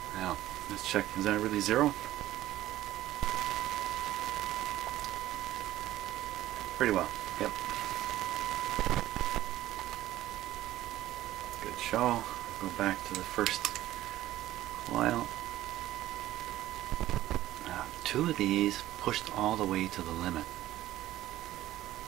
Now, let's check. Is that really zero? Pretty well. Yep. Good show. Go back to the first coil. Now, 2 of these pushed all the way to the limit.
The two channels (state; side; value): quieter; left; 14.6 dB